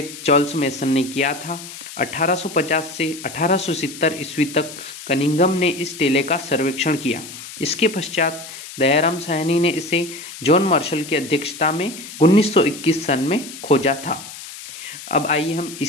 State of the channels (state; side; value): noise; left; hiss, 13 dB below the sound